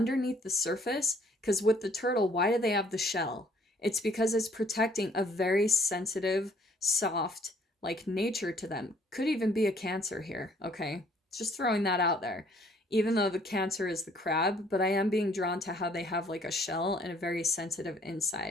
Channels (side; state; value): both; normal; correlation 0.61